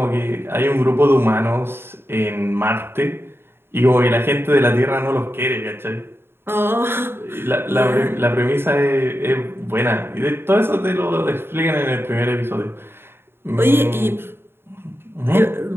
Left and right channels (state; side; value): late; left; 0.11 ms